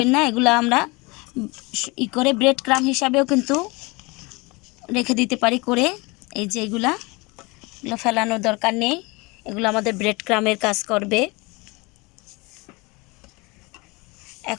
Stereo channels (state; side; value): quieter; right; 25.7 dB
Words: না, এগুলো আমরা করে ব্রেড ক্রাম্ব হিসাবেও কিন্তু রেখে দিতে পারি করে। এই যে এগুলো ফেলানোর দরকার নেই, এগুলো আমাদের ব্রেড ক্রাম্বের কাজ করবে।